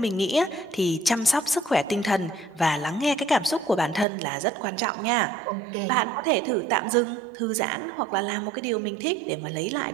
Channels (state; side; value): drops out; left; at 4.0 s